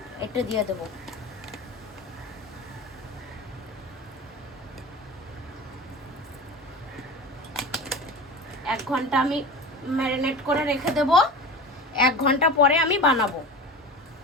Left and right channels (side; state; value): both; normal; correlation 0.31